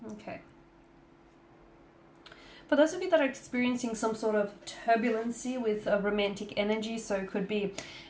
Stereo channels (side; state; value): both; identical; correlation 1.00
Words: Okay. For those of you that are experiencing some sort of turbulency with a romantic energy, so it could be